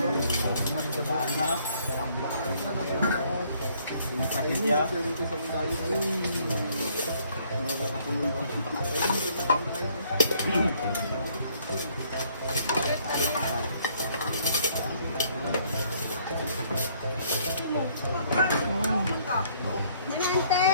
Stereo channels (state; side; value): inverted; both; correlation -0.64